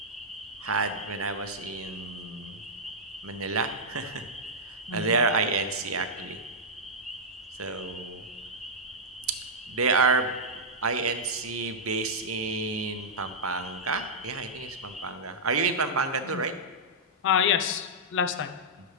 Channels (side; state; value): both; normal; correlation -0.09